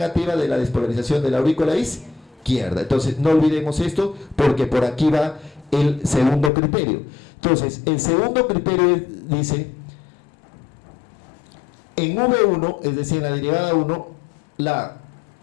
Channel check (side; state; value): right; drops out; at 6.5 s